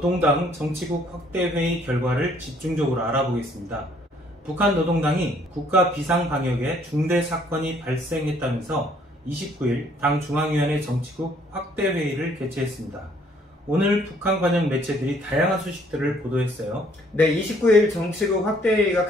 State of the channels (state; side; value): normal; both; correlation 0.63